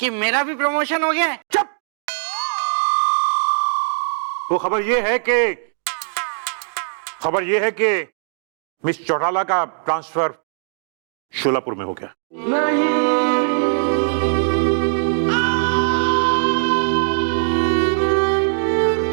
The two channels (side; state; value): left; silent; digital silence